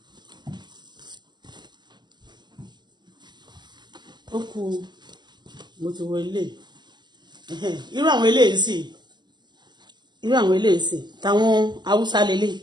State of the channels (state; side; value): late; left; 0.21 ms